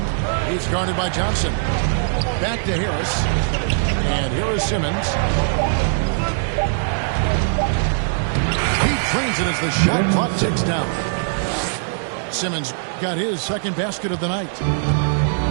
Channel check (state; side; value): silent; left; digital silence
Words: He's guarded by Johnson. Back to Harris. And here is Simmons. He trains it as the shot clock ticks down. Simmons got his second basket of the night.